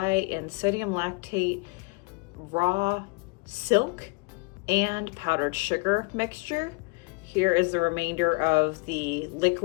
and sodium lactate raw silk and powdered sugar mixture. Here is the remainder of the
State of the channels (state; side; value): quieter; right; 29.7 dB